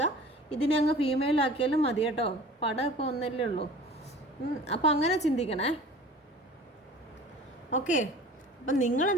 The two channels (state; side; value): normal; both; correlation 0.43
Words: ഇതിനെ അങ്ങ് ഫീമെയിലാക്കിയാലും മതി കേട്ടോ. പടം ഇപ്പോൾ ഒന്നല്ലേ ഉള്ളൂ. അപ്പം അങ്ങനെ ചിന്തിക്കണേ. ഓക്കെ, അപ്പം